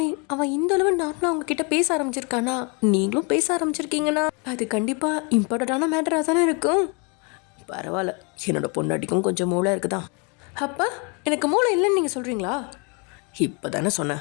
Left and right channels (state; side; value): quieter; right; 33.2 dB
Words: அவன் இந்த அளவு நார்மலாக உங்ககிட்ட பேச ஆரம்பிச்சிருக்கானா, நீங்களும் பேச ஆரம்பிச்சிருக்கீங்கன்னா அது கண்டிப்பாக இம்பார்ட்டண்ட்டான மேட்டராக தானே இருக்கும். பரவாயில்ல, என்னோடய பொண்டாட்டிக்கும் கொஞ்சம் மூளை இருக்குதான். அப்பா, எனக்கு மூளை இல்லைன்னு நீங்கள் சொல்கிறீங்களா? இப்போ தானே சொன்னேன்